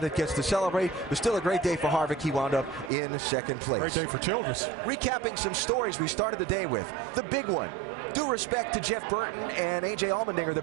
gets to celebrate. It was still a great day for Harvick. He wound up in 2nd place. Great day for Childress. Recapping some stories we started the day with. The big one. Due respect to Jeff Burton and A.J. Allmendinger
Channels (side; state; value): left; drops out; at 2.9 s